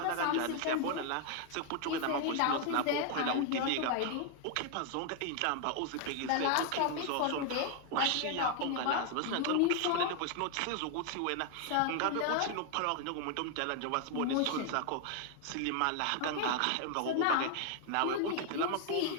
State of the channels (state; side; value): different; both; correlation 0.00